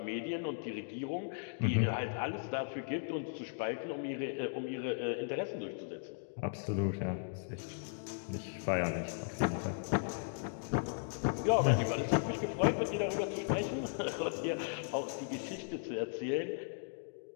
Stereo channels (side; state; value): right; silent; digital silence